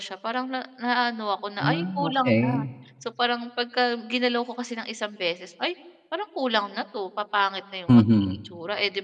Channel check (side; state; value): both; identical; correlation 1.00